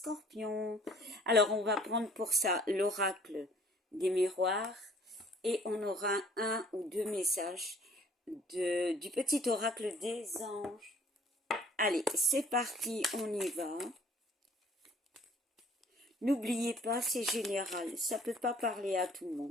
Alors on va prendre pour ça l'oracle des miroirs et on aura un ou deux messages du petit oracle des anges. Allez, c'est parti, on y va. N'oubliez pas, c'est général, ça ne peut pas parler à tout le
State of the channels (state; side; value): normal; both; correlation 0.55